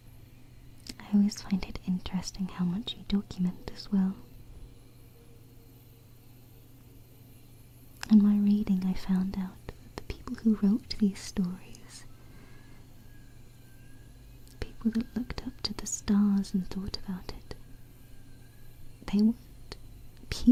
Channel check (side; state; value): both; identical; correlation 1.00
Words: I always find it interesting how much you document as well. In my reading, I found out that the people who wrote these stories, people that looked up to the stars and thought about it, they weren't